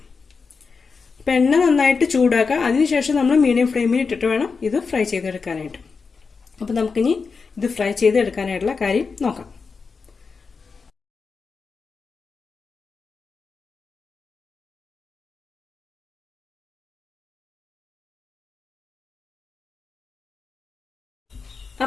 അപ്പം എണ്ണ നന്നായിട്ട് ചൂടാക്കുക. അതിനുശേഷം നമ്മൾ മീഡിയം ഫ്ലെയിമിൽ ഇട്ടിട്ട് വേണം ഇത് ഫ്രൈ ചെയ്തെടുക്കാനായിട്ട്. അപ്പം നമുക്കിനി ഇത് ഫ്രൈ ചെയ്തെടുക്കാനായിട്ടുള്ള കാര്യം നോക്കാം.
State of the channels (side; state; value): right; quieter; 5.0 dB